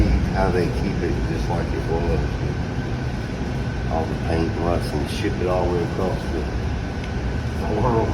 How they keep it just like it was. All the paint and rust and ship it all the way across the world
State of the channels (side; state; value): both; identical; correlation 1.00